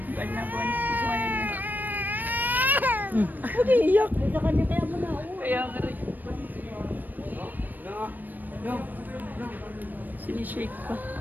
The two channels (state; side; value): late; left; 0.088 ms